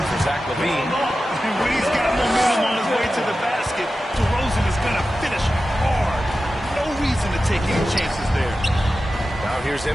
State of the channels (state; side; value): normal; both; correlation 0.93